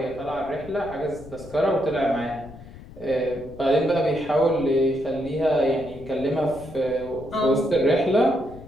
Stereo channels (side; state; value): left; noise; rumble, 17 dB below the sound